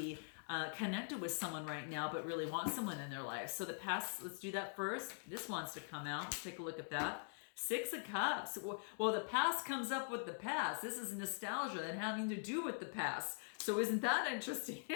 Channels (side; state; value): right; silent; digital silence